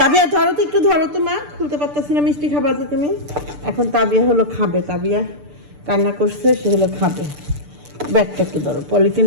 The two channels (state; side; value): late; left; 6.8 ms